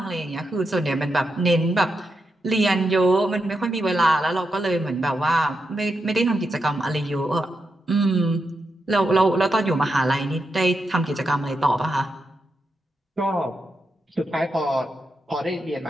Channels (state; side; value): normal; both; correlation 0.85